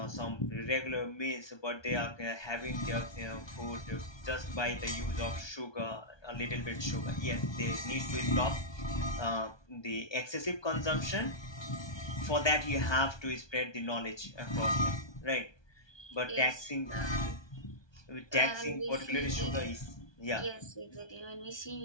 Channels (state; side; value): late; right; 1.2 ms